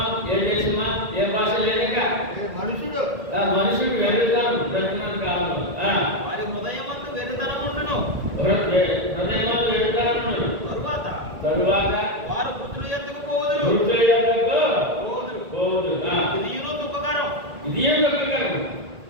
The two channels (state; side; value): late; left; 1.9 ms